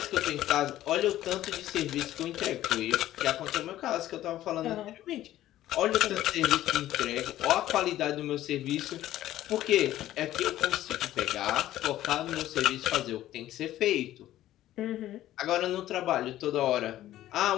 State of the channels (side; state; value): right; quieter; 13.8 dB